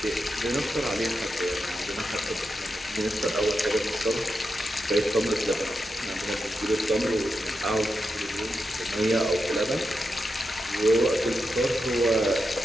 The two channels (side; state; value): both; normal; correlation 0.87